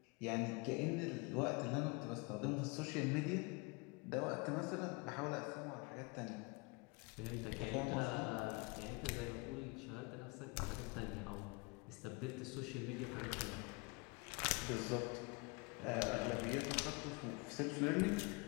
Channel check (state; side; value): quieter; right; 29.0 dB